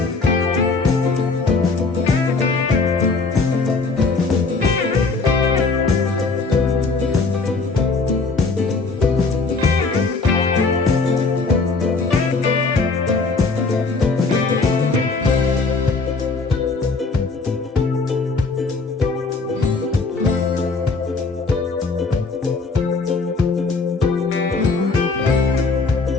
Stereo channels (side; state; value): right; quieter; 4.0 dB